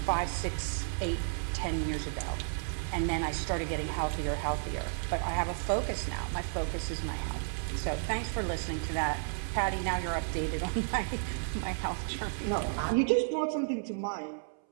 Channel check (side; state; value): left; silent; 56 dB below the other